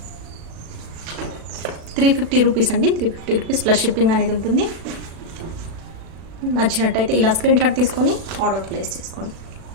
350 రూపీస్ అండి. 350 రూపీస్ ప్లస్ షిప్పింగ్ అనేది ఉంటుంది. నచ్చినట్టయితే ఇలా స్క్రీన్ షాట్ తీసుకొని ఆర్డర్ ప్లేస్ చేసుకోండి.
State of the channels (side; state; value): left; late; 36 ms